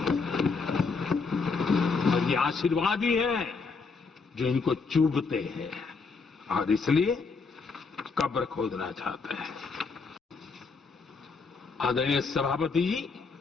और ये आशीर्वाद ही है जो इनको चूभते हैं और इसलिए कब्र खोदना चाहते हैं। आदरणीय सभापति जी,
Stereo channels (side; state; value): right; quieter; 4.6 dB